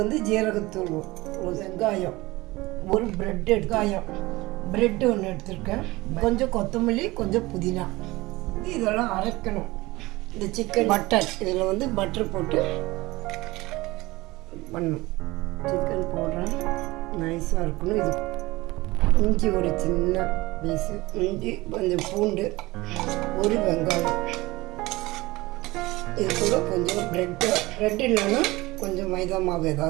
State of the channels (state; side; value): quieter; left; 20.6 dB